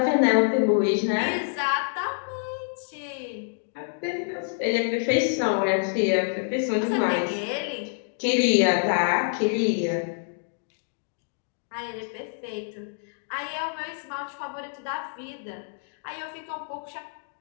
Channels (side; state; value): right; silent; digital silence